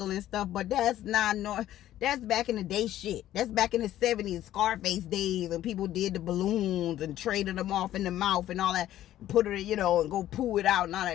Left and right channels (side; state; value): right; quieter; 13.0 dB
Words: and stuff, but that's that's back in the day shit. That's back in the 70s, Scarface days, and people did the balloons and traded them off in the mouth and all that, put it, you know, and go poo it out and all